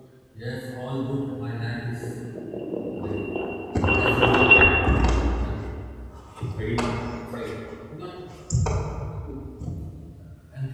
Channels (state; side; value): identical; both; correlation 1.00